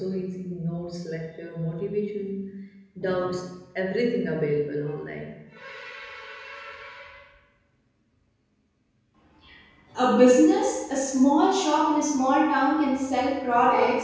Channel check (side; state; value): both; identical; correlation 1.00